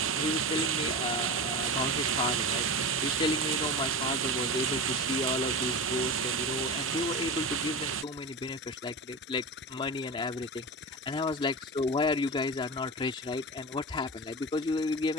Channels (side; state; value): both; normal; correlation 0.25